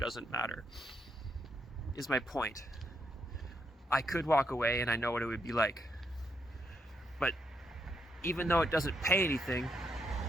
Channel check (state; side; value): normal; both; correlation 0.78